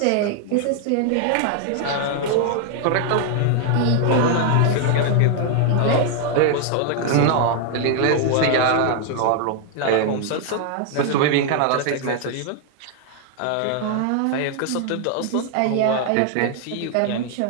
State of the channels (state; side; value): different; both; correlation 0.00